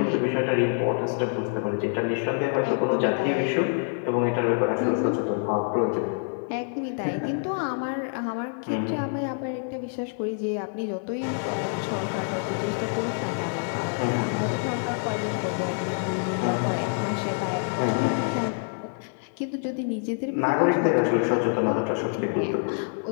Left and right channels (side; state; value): right; silent; 61 dB below the other